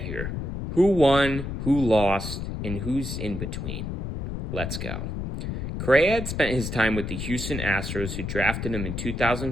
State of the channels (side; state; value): left; noise; rumble, 4 dB below the sound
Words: here? Who won, who lost, and who's in between? Let's go. Correa had spent his time with the Houston Astros, who drafted him in